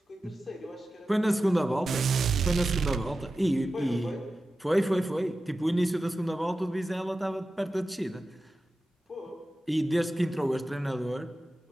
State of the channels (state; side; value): normal; both; correlation 0.94